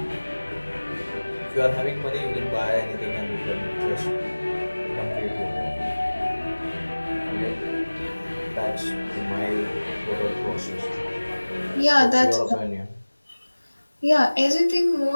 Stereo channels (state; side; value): inverted; both; correlation -1.00